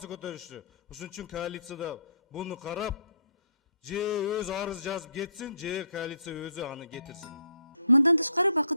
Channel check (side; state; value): both; inverted; correlation -0.69